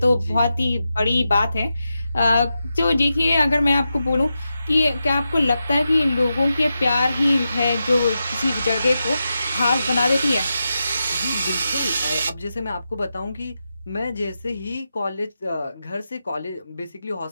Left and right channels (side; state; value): both; inverted; correlation -0.89